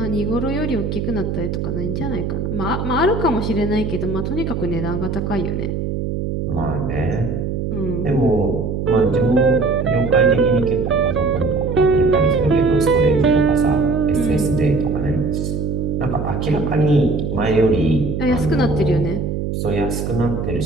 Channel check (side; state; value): right; noise; hum, 3 dB below the sound